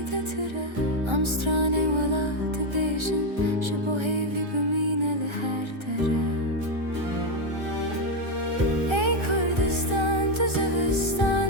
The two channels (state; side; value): late; left; 1.3 ms